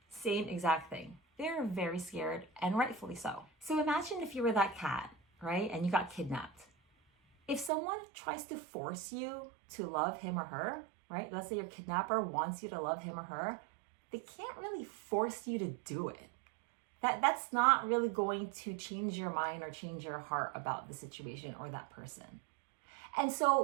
Same exact thing. They're very scared, and rightfully so. So imagine if you were that cat, right? And you got kidnapped. If someone tries to force you to love him or her, right? Let's say your kidnapper wants you to love him or her, they can't really force you to do it. That's not really going to change your mind or change your heart about the situation or that person. And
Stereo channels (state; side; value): drops out; left; at 7.7 s